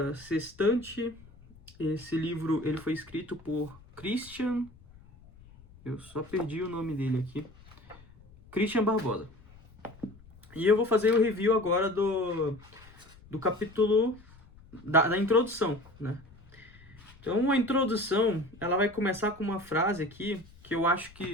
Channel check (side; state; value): left; noise; rumble, 23 dB below the sound